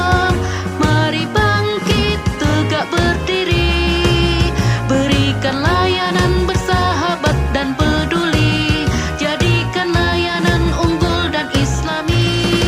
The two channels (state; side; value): identical; both; correlation 1.00